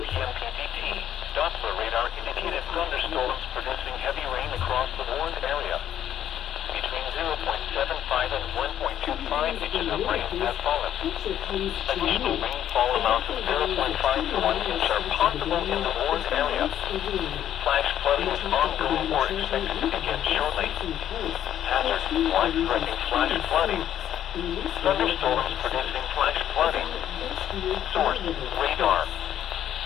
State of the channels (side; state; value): right; quieter; 10.8 dB